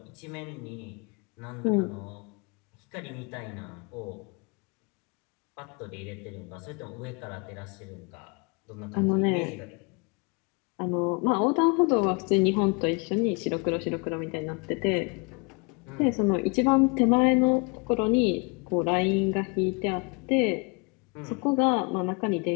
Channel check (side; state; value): right; quieter; 32.1 dB